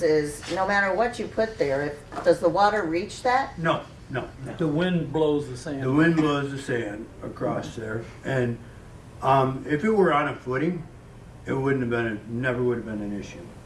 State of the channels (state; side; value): identical; both; correlation 1.00